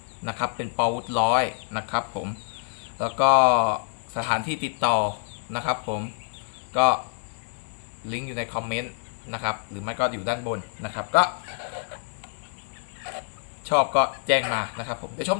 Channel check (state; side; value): silent; right; 60 dB below the other